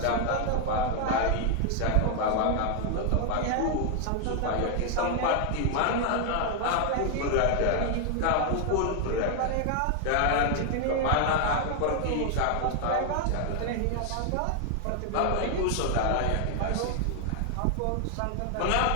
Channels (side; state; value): both; different; correlation 0.00